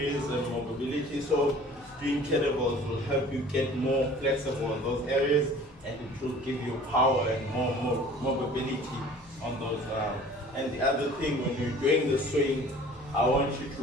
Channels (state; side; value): normal; both; correlation 0.47